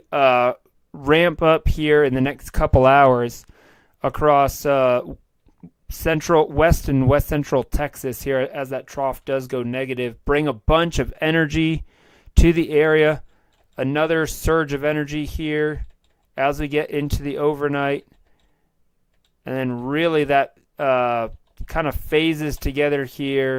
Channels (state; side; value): identical; both; correlation 1.00